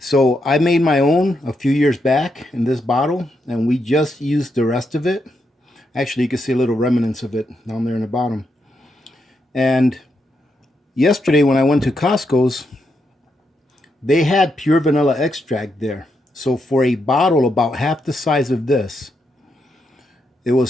so I made my own a few years back in this bottle, and we just used the rest of it. Actually, you can see a little remnants of it down there in the bottom. And yesterday when I went to Costco's, they had pure vanilla extract there. So for a bottle about half the size of this, it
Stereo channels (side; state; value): both; normal; correlation 0.82